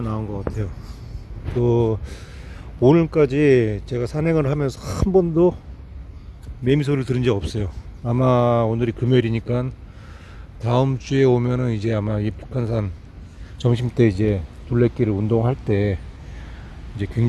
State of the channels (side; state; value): both; identical; correlation 1.00